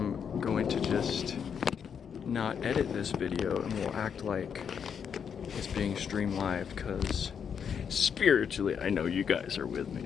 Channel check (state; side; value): quieter; right; 7.3 dB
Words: going to just not edit this video and will act like it's being streamed live, because spiritually I know you guys are with